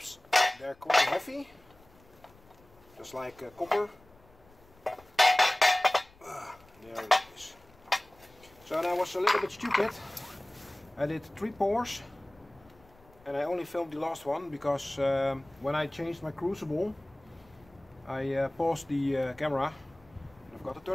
they're quite heavy, just like copper. There it is. So I was a little bit stupid. I did 3 pours and I only filmed the last one because when I changed my crucible I paused the camera and I've got to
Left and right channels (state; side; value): noise; left; rumble, 27 dB below the sound